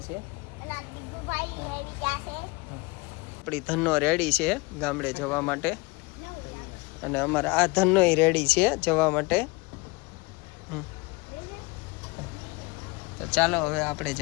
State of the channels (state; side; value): quieter; right; 25.3 dB